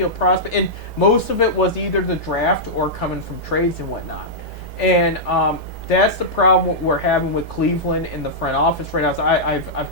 prospects, and most of it was either the draft or coming from trades and whatnot. And that's the problem we're having with Cleveland in the front office right now. So I've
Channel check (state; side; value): normal; both; correlation -0.10